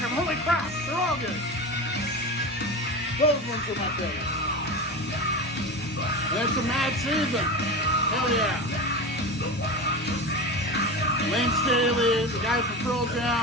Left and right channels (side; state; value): both; normal; correlation 0.26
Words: holy crap, they're all good. Those ones are my favorite. And it's a Mad Season. Hell yeah. Lane Staley, the guys from Pearl